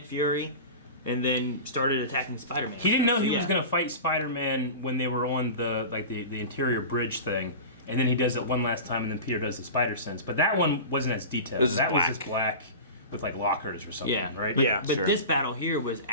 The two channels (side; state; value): both; inverted; correlation -0.31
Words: Fury, and then started attacking Spider-Man. He didn't know he So, was yeah. going to fight Spider-Man when they were on the interior bridge thing, and then he does it one last time, and then Peter does the spider sense. But that one wasn't as detailed. That was just black with like lockers or something, right? Yeah, But this battle here was